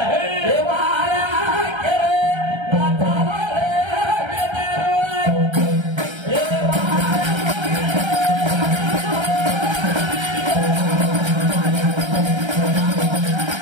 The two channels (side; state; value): left; late; 1.3 ms